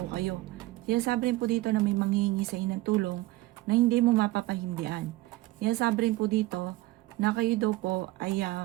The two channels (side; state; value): left; quieter; 18.5 dB